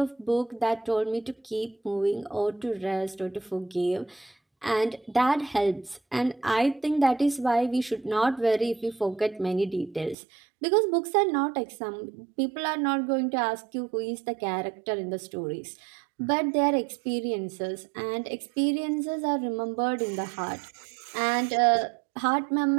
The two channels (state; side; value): drops out; left; at 10.2 s